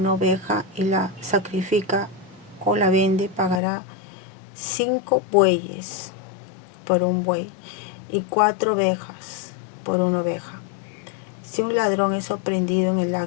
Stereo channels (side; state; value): right; drops out; at 3.6 s